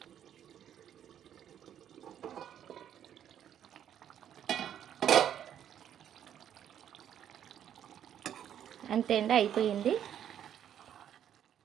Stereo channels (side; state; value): left; quieter; 9.8 dB